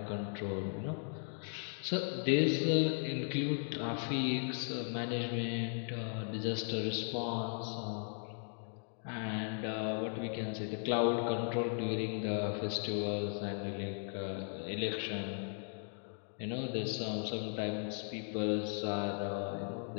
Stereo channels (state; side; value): silent; right; 53 dB below the other